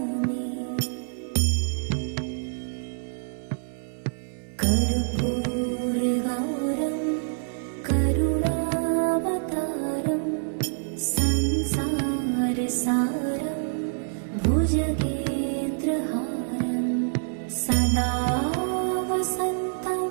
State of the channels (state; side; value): silent; left; 59 dB below the other